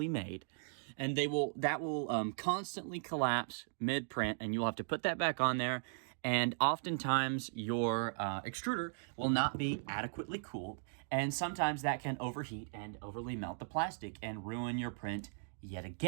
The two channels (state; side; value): silent; left; digital silence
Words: made, and that will constantly collapse mid-print, and you'll have to put that back on there. And oftentimes your extruder will not be adequately cooled, and sometimes that can overheat and overly melt the plastic and ruin your print yet